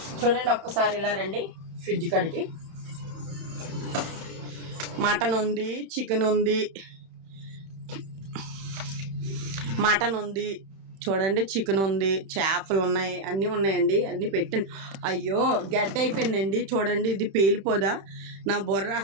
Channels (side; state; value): left; late; 31 ms